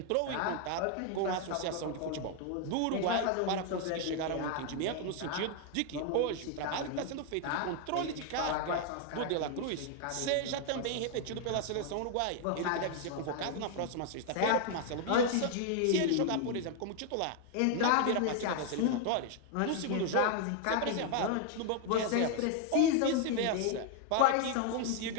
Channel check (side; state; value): both; different; correlation 0.00